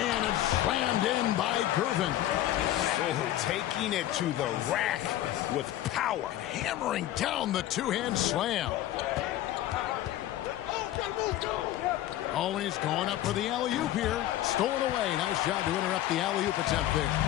it's slammed in by Gervin. Oh, taking it to the rack with power. Hammering down the 2-hand slam. Always going up for the alley-oop here. Stolen away. Nice job to interrupt the alley-oop attempt there.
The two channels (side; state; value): right; quieter; 13.6 dB